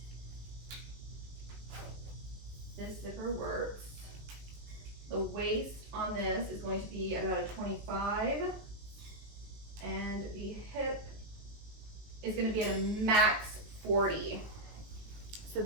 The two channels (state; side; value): late; left; 19 ms